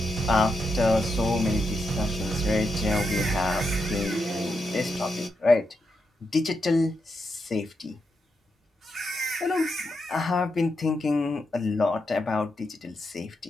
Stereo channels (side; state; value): both; normal; correlation 0.84